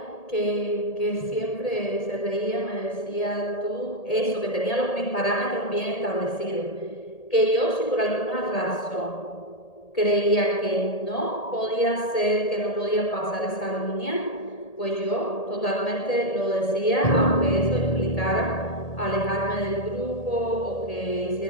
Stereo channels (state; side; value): late; right; 1.8 ms